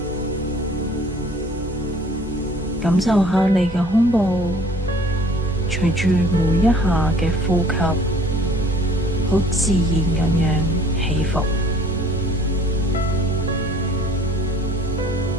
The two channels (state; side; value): normal; both; correlation 0.54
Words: 感受下你嘅胸部隨住每一下嘅呼吸，好自然咁樣起伏。